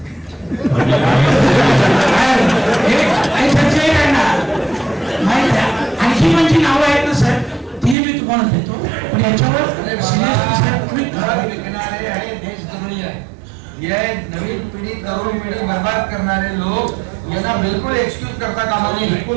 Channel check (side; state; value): left; drops out; at 8.0 s